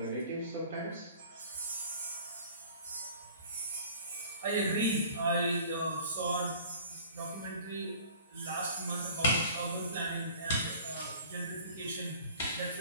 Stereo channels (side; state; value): both; inverted; correlation -0.47